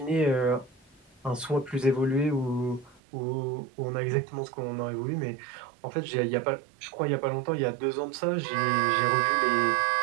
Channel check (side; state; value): left; drops out; at 3.0 s